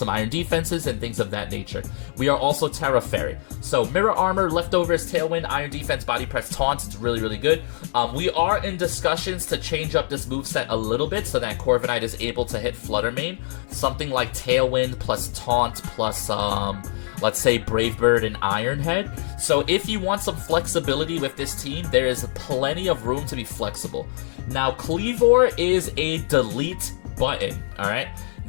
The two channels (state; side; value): silent; right; digital silence